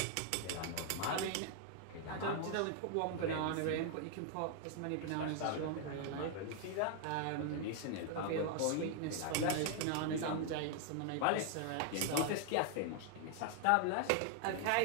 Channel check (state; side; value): different; both; correlation 0.00